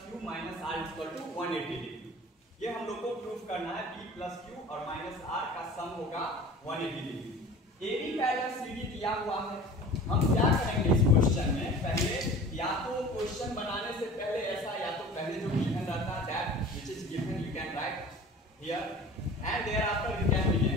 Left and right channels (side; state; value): both; normal; correlation 0.41